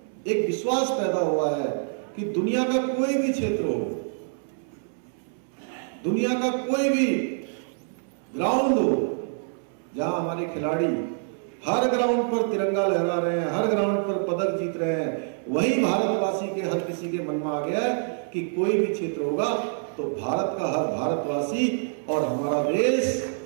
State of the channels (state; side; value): silent; left; 61 dB below the other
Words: एक विश्वास पैदा हुआ है कि दुनिया का कोई भी क्षेत्र हो, दुनिया का कोई भी ग्राउंड हो, जहां हमारे खिलाड़ी हर ग्राउंड पर तिरंगा लहरा रहे हैं, हर ग्राउंड पर पदक जीत रहे हैं, वही भारतवासी के हर किसी के मन में आ गया है कि कोई भी क्षेत्र होगा तो भारत का हर भारतवासी और हमारा देश